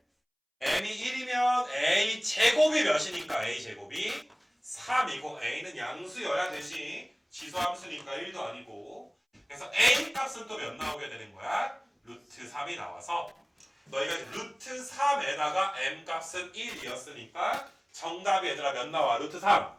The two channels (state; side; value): identical; both; correlation 1.00